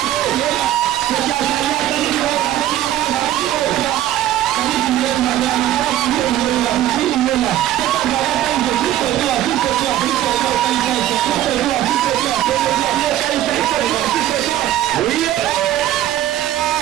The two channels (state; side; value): quieter; left; 12.9 dB